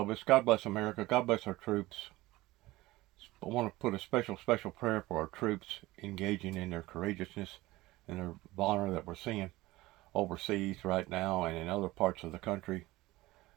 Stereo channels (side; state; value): left; quieter; 18.9 dB